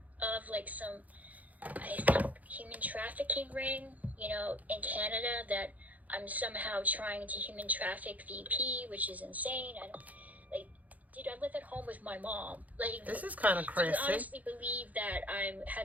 of like some, I think, human trafficking ring, you know, in Canada that I'm somehow trying to human traffic VP, which is insane. Like, dude, I live at home with my mom. Like, This is kind of crazy. Do you honestly believe that I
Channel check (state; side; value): late; left; 0.077 ms